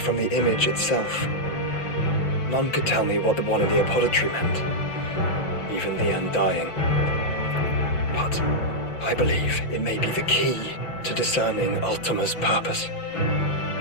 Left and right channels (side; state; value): right; late; 5.8 ms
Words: the image itself. None could tell me what the one in the apothecary meant, even the Undying. But I believe it may be the key to discerning Ultima's purpose.